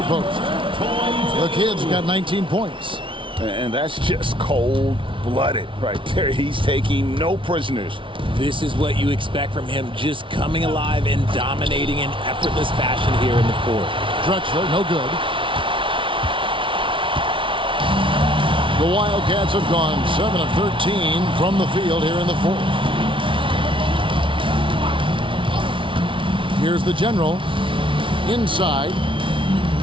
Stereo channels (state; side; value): late; left; 0.25 ms